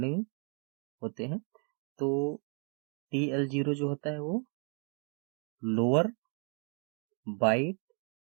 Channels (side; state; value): left; quieter; 39.4 dB